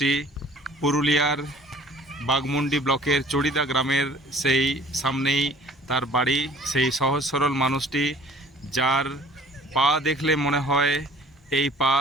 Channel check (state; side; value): normal; both; correlation 0.52